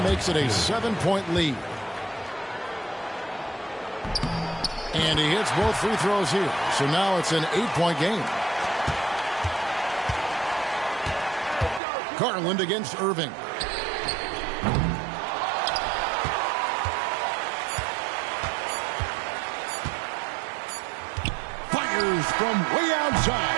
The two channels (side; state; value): left; drops out; at 11.8 s